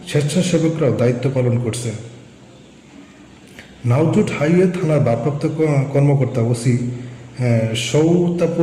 স্বেচ্ছাসেবকরাও দায়িত্ব পালন করছেন। নাওজুট হাইওয়ে থানার ভারপ্রাপ্ত কর্মকর্তা ওসি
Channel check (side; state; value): both; identical; correlation 1.00